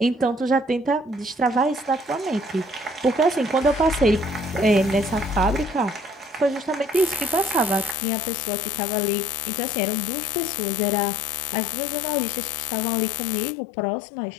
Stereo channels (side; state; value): right; drops out; at 8.0 s